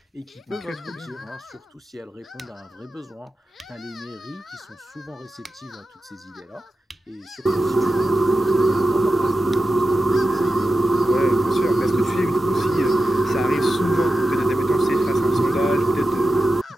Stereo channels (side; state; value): both; normal; correlation 0.92